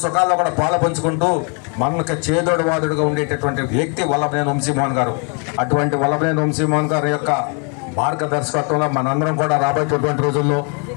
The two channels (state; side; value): quieter; right; 37.5 dB